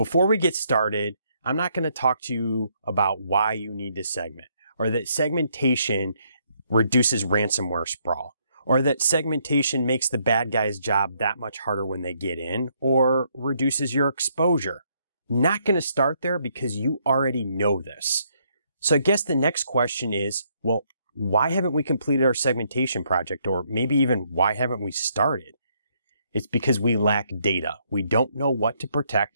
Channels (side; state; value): both; inverted; correlation -0.72